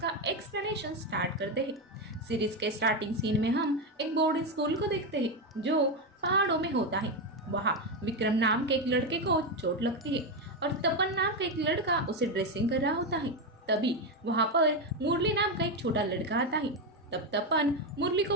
एक्सप्लेनेशन स्टार्ट करते हैं। सीरीज के स्टार्टिंग सीन में हम एक बोर्डिंग स्कूल को देखते हैं जो पहाड़ों में होता है। वहाँ विक्रम नाम के एक लड़के को चोट लगती है और तपन नाम का एक लड़का उसे ड्रेसिंग कर रहा होता है। तभी वहाँ पर मुरली नाम का एक छोटा लड़का आता है। तब तपन मुरली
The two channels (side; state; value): both; normal; correlation 0.10